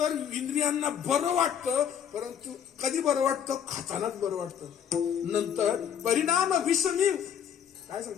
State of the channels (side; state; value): right; quieter; 8.6 dB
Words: इंद्रियांना बरं वाटतं, परंतु कधी बरं वाटतं? खातानाच बरं वाटतं. नंतर परिणाम विषमी, काय